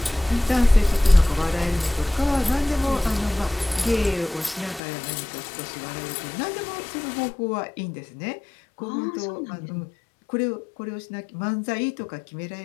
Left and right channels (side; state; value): right; drops out; at 4.8 s